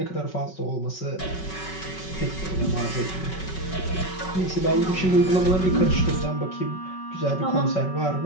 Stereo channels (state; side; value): late; right; 5.3 ms